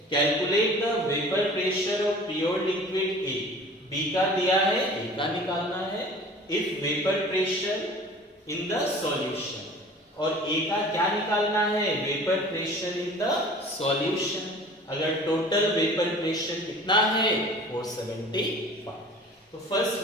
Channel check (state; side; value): normal; both; correlation 0.45